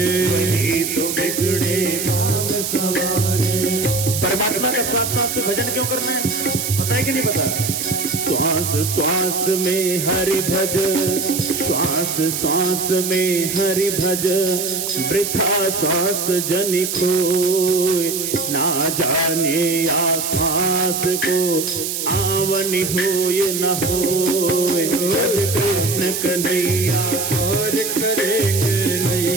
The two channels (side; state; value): right; noise; hiss, 3 dB below the sound